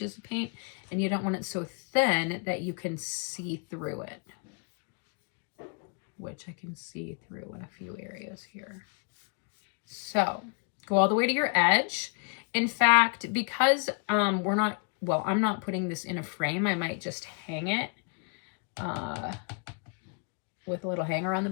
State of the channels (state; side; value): quieter; right; 38.2 dB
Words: of paint, and you don't want it so thin that you can see through it, which I can see through in a few areas here. So go all the way to your edge. In fact, because I'm not putting this in a frame, I might just hang it with a little hanger on the